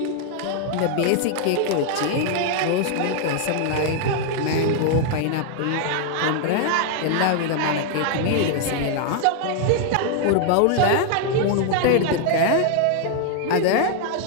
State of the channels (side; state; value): both; different; correlation 0.00